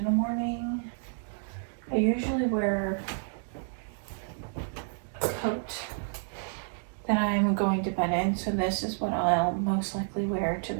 the morning. I usually wear a coat that I'm going to bed in, so this is what I'll most likely wear to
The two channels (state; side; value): silent; left; digital silence